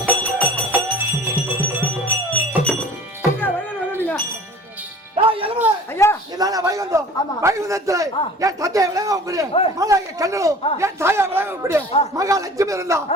வைகுந்தத்தில் என் தந்தையை விளங்கக்கூடிய மகாய கண்ணனும் என் தாயா விளங்கக்கூடிய மகாலட்சுமி இருந்தா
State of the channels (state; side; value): normal; both; correlation 0.45